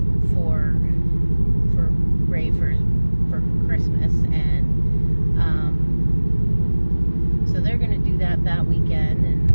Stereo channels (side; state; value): both; inverted; correlation -1.00